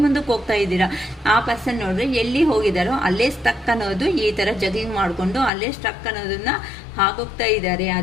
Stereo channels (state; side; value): drops out; right; at 5.5 s